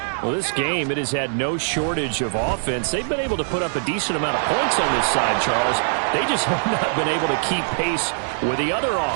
Well, this game, it has had no shortage of offense. They've been able to put up a decent amount of points on this side, Charles. They just have not been able to keep pace with the other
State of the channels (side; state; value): left; silent; 64 dB below the other